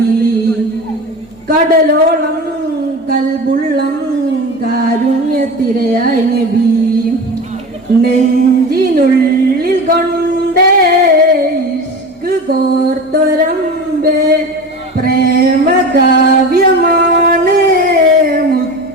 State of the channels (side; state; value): both; normal; correlation 0.31